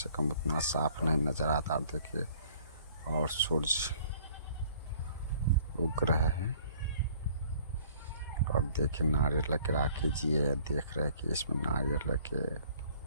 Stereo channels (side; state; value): both; inverted; correlation -0.56